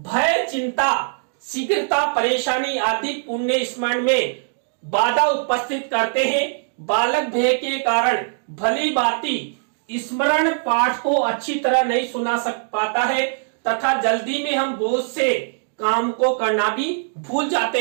चिंता, शीघ्रता, परेशानी आदि पुण्य स्मरण में बाधा उपस्थित करते हैं। बालक भय के कारण भली भांति स्मरण पाठ को अच्छी तरह नहीं सुना पाता है तथा जल्दी में हम बोझ से काम को करना भी भूल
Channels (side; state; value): left; silent; digital silence